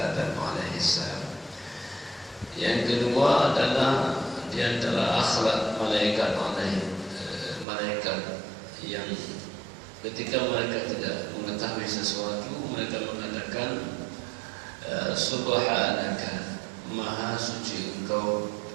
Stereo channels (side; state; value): left; drops out; at 7.7 s